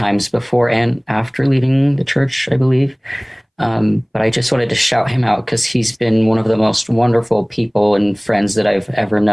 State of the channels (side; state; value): both; identical; correlation 1.00